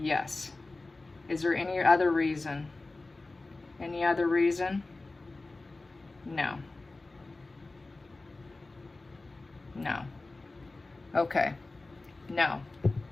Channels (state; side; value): quieter; right; 3.2 dB